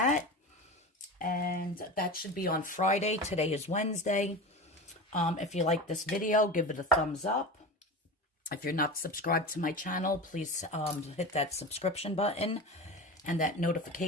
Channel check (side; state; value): both; normal; correlation 0.29